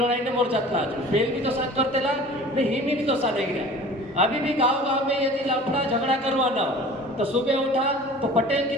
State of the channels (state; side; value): normal; both; correlation 0.43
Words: मोर्चातला फेल भी तो साथ करते ला ने हिमी भी तो साथ नहीं गया। अभी भी गांव गांव में यदि लफड़ा झगड़ा करवाना हो तो सुबह उठा तो पटेल